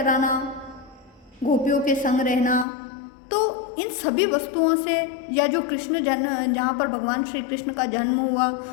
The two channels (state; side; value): drops out; right; at 2.7 s